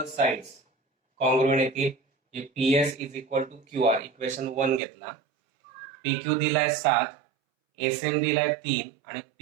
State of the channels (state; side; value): drops out; left; at 4.8 s